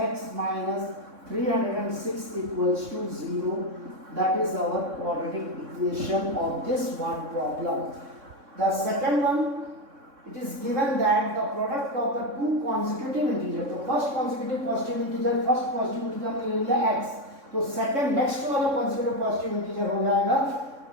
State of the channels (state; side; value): late; left; 3.6 ms